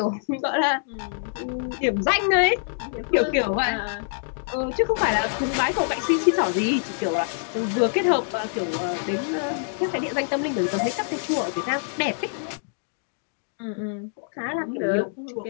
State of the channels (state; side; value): silent; right; digital silence